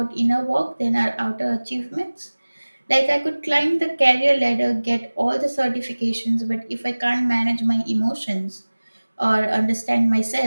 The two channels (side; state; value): both; inverted; correlation -1.00